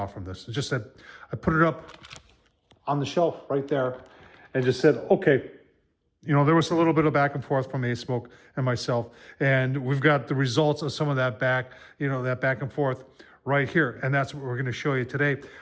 from this. It's just that I put it up on the shelf right there and just said, okay, you know, there was a little bit of back and forth from Asmoke and myself, and we've got the results of some of that back and forth right here, and that's what we're going to show you today.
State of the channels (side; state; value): both; identical; correlation 1.00